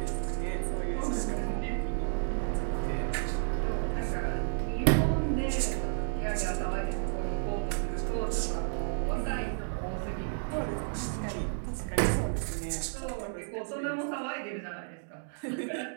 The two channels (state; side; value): silent; left; digital silence